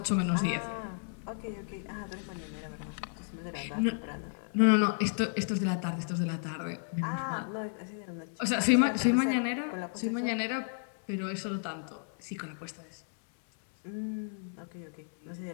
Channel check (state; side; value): silent; right; 56 dB below the other